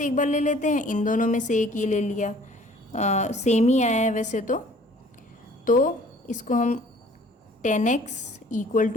एक बार ले लेते हैं, इन दोनों में से एक ये ले लिया, सेम ही आया है वैसे तो इसको हम 10x इक्वल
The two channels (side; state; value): both; normal; correlation 0.54